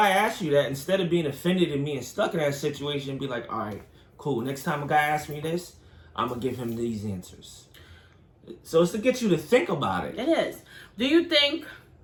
asks you that, instead of being offended and being stuck in that situation, be like, all right, cool. Next time a guy asks me this, I'm going to give him these answers. So it's to get you to think about it. It is. Do you think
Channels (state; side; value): identical; both; correlation 1.00